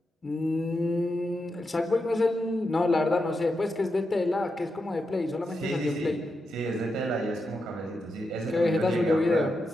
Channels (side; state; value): both; normal; correlation 0.86